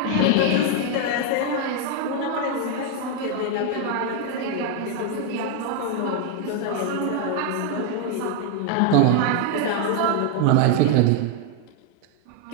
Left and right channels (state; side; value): different; both; correlation 0.00